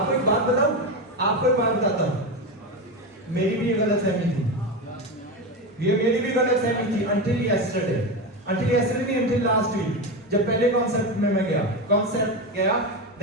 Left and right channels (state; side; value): normal; both; correlation 0.17